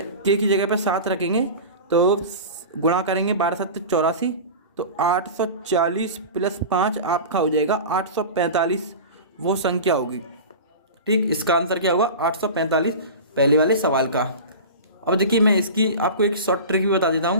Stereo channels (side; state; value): both; inverted; correlation -0.31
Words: के की जगह पर 7 रखेंगे तो गुणा करेंगे 12 7 84, तो 840 प्लस 5 आपका हो जाएगा 845, वो संख्या होगी। ठीक, इसका आंसर क्या होगा 845, पहले वाले सवाल का। अब देखिए मैं इसकी आपको एक शॉर्ट ट्रिक भी बता देता